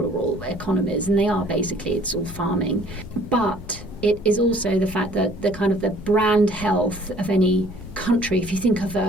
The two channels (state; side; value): noise; left; rumble, 15 dB below the sound